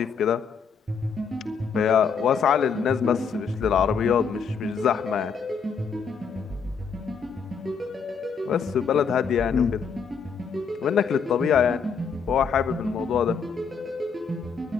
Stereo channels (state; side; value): quieter; right; 6.0 dB